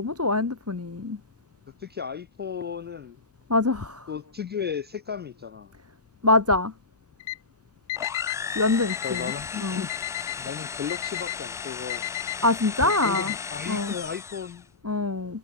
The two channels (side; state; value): right; quieter; 3.2 dB